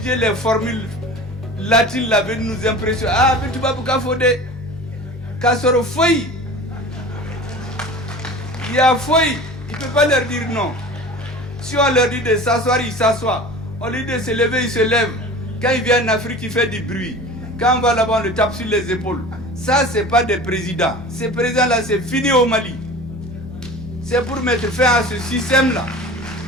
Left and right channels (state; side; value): normal; both; correlation 0.38